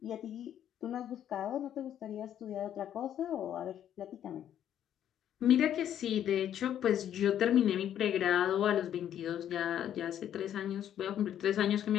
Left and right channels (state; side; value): quieter; right; 10.4 dB